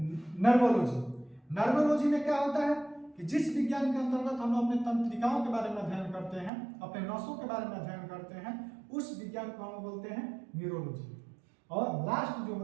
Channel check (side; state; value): left; drops out; at 6.5 s